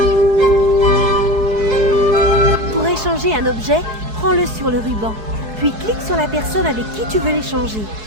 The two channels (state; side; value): late; left; 4.7 ms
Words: Pour échanger un objet, prends-le sur le ruban. Puis clique sur la personne avec qui tu veux l'échanger.